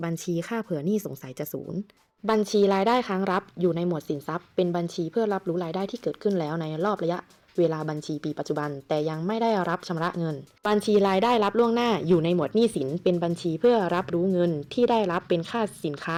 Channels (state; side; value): identical; both; correlation 1.00